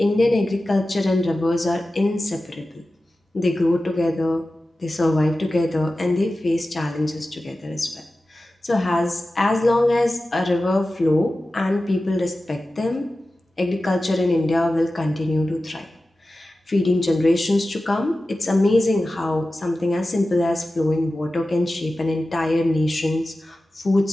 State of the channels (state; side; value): normal; both; correlation 0.95